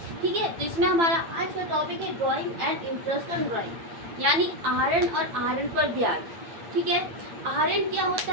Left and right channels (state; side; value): late; left; 8.9 ms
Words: ठीक है, तो इसमें हमारा आज का टॉपिक है drawing and interest on drawing, यानी आहरण और आहरण पर ब्याज। ठीक है, आहरण क्या